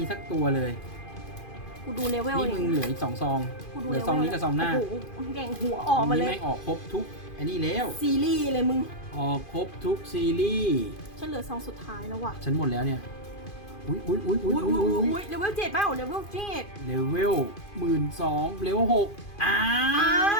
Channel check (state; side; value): late; right; 2.5 ms